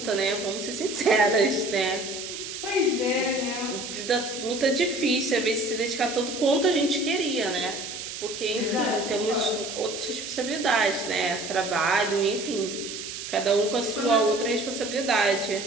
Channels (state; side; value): noise; right; hiss, 8 dB below the sound